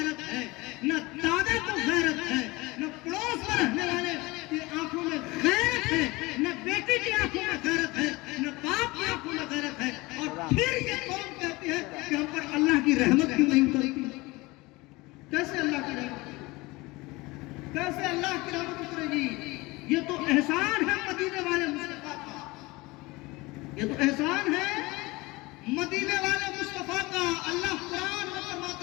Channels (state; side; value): quieter; right; 22.5 dB